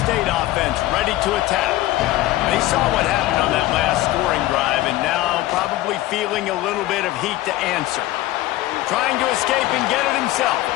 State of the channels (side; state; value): right; quieter; 16.4 dB